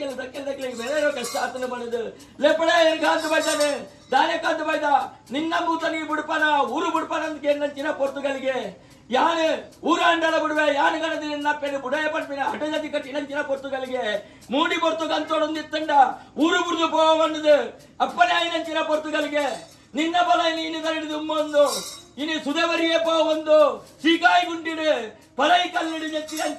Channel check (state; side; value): identical; both; correlation 1.00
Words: ದಕ್ಕಿಗೆ ಬೇರೆ ಕಷ್ಟ ಆತನ ಬಣದು ಲೆಪಡ ಕಾಂತ ಬೈದಾನೆ ದಾನೆ ಕಾಂತ ಬೈದ ನಿನ್ನ ಬೂತನಿಗೆ ಬಿಡ್ಪನ ಊರು ಬಿಡ್ಪನ ಅಂತ ಕೇಳಿನಂಚಿನ ಪೊರ್ತುಗಳಿಗೆ ಯಾನು ಊರ ಅಂಡಲ ಬಿಡುವೆ ಯಾನು ಗಣದ ನಿನ್ನಪ್ಪೆನು ಬುಡಯ ಪಂಪಿನ ಹಠಜತಿ ಕಟ್ಟಿನಂಚಿನ ಪೊರ್ತುಗಳಿಗೆ ಮೂಡಿ ಪೊರ್ತುಗಂತೊಡೊಂದಿತ್ತಂಡ ಊರು ಬುಡ್ದು ಪೋವನ್ನದು ಅಪ್ಪನೇ ಆಯ್ನಂಚಿನ ಪೊರ್ತುಗಳಿಗೆ ನಿನ್ನ ಬಲ ನೀನು ಕರಡಿದು ಉಮ್ಮೊಂದು ಇನಿ ಸುಧವರಿಯೇ ಪೋ ಒಂದು ಸೀಕಾಯಿ ಗುಂಡಿಡು ಪರೈ ಕಲ್ಲಿಡು